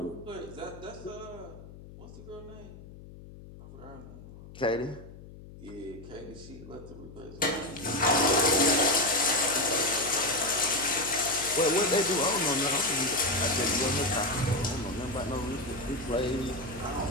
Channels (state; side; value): noise; left; hum, 17 dB below the sound